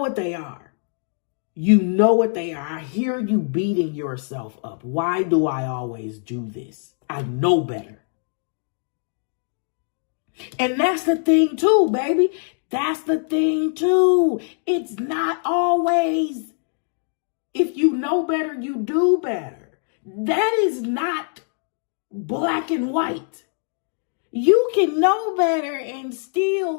they are. You know what they are. I hear you beating yourself up. Why do I always do this? I know better. And that's the thing too, baby. That's the thing too. It's not always, if you know better, you do better. That is not black and white. You can know better and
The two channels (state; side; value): silent; right; 64 dB below the other